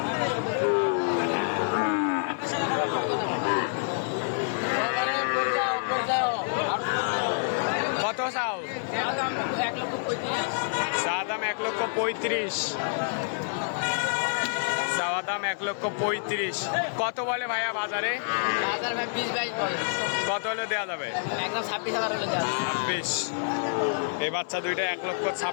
কত চাও? চা দাম 1,35,000। চাওয়া দাম 1,35,000। কত বলে ভাইয়া বাজারে? বাজার ভাই 20-22 বলে, কত হলে দেওয়া যাবে? একদম 26,000 হলে দেওয়া যাবে। 26। এই বাচ্চা দুইটা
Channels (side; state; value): right; silent; digital silence